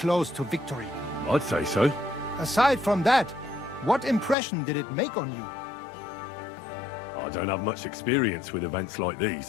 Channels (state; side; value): drops out; right; at 4.4 s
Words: to victory. I'd say so. Aside from that, what impression did it make on you? I don't have much experience with events like